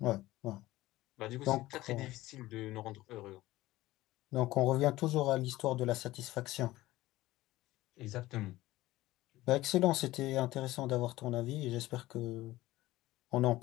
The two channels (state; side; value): quieter; right; 17.2 dB